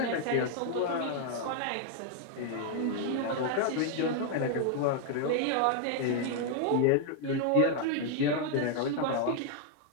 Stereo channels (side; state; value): both; different; correlation 0.00